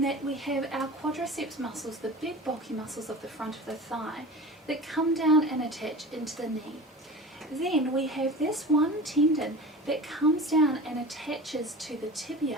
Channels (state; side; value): normal; both; correlation 0.35